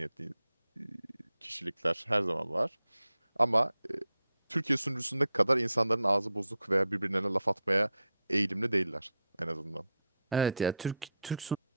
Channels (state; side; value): inverted; both; correlation -0.81